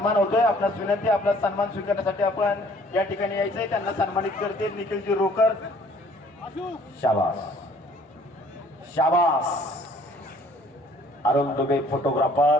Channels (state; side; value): normal; both; correlation 0.57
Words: होतोय। आपणास विनंती आपला सन्मान स्वीकारण्यासाठी आपण या ठिकाणी यायचंय। त्यांना सन्मानित करते निखिलजी रोकर। शाबास शाबास। अरुण दुबे